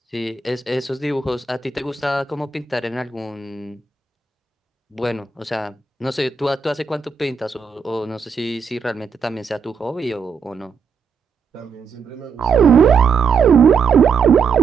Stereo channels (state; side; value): quieter; left; 5.6 dB